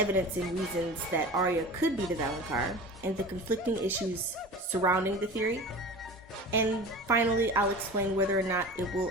and reasons that Arya could be the Valonqar, and the conflicting issues surrounding the theory. And finally, I'll explain whether or not it will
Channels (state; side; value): normal; both; correlation 0.35